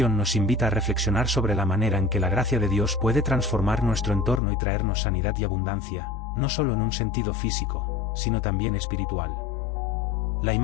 nos invita a reflexionar sobre la manera en que la gracia de Dios puede transformar nuestro entorno y traernos sanidad y abundancia, no solo en un sentido físico, sino también espiritual. La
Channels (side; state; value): right; drops out; at 4.4 s